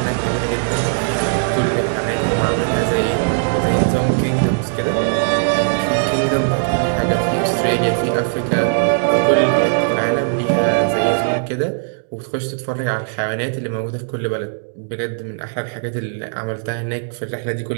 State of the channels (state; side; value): silent; left; digital silence